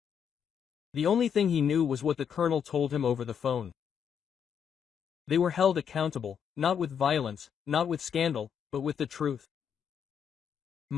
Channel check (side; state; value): right; quieter; 7.8 dB